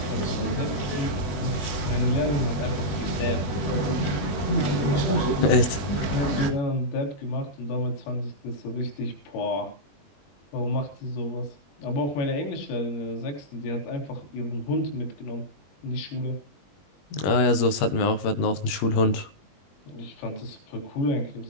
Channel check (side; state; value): right; late; 21 ms